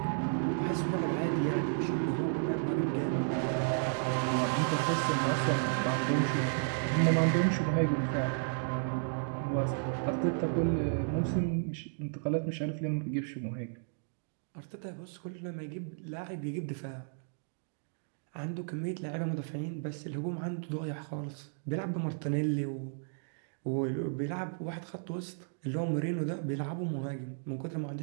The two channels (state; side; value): silent; left; digital silence